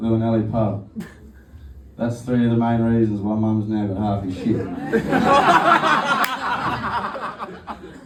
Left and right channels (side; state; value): both; identical; correlation 1.00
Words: pub. That's 3 of the main reasons why Mum's now got half his shit.